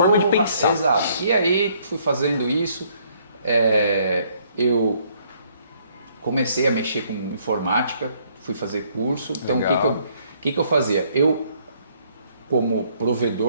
de pensar. Exato. E aí, fui fazendo isso, eu comecei a mexer com informática, fui fazer curso. Então, o que eu fazia? Eu, como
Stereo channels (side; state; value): both; inverted; correlation -0.66